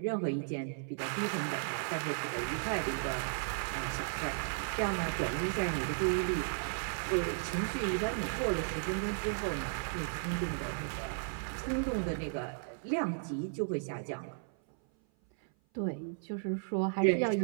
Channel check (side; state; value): left; silent; 55 dB below the other